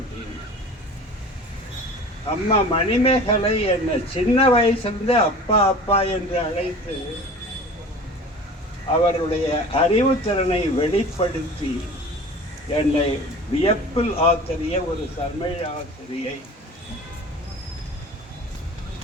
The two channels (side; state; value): both; normal; correlation 0.40